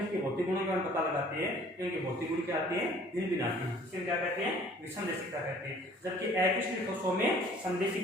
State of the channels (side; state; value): both; normal; correlation 0.53